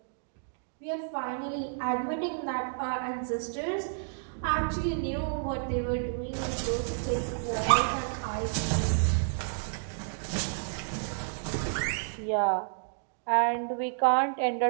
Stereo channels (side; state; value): left; silent; digital silence